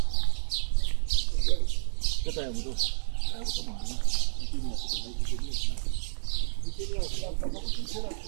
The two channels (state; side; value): silent; left; digital silence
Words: Cât ai avut? Ai avut o mare, nu? Chimia, cât ai avut? Chimia, am făcut un serat.